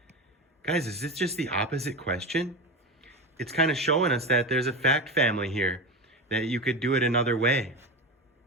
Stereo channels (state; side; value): normal; both; correlation 0.22